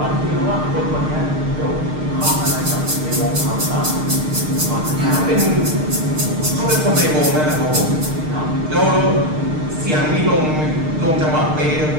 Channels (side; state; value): left; late; 6.6 ms